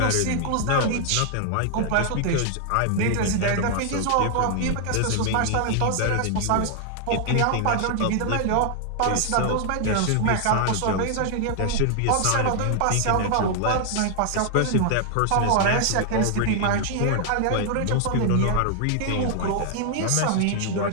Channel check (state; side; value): different; both; correlation 0.00